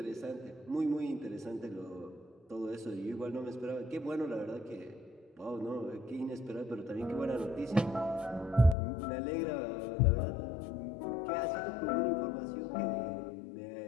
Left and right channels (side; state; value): right; drops out; at 8.8 s